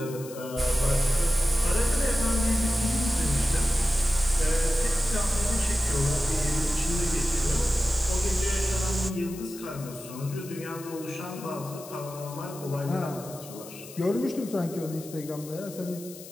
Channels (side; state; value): left; noise; hiss, 16 dB below the sound